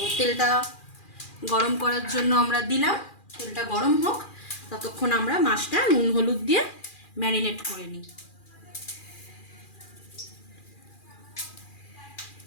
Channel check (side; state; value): right; late; 2.4 ms